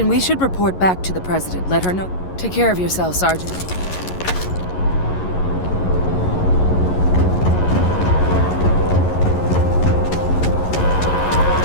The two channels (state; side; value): late; right; 11 ms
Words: we should report back to the President. Let her know. Take care of yourself, Sergeant.